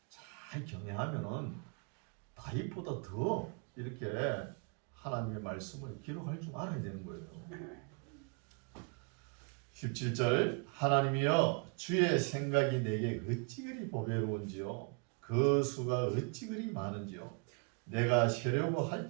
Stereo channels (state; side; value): quieter; left; 35.6 dB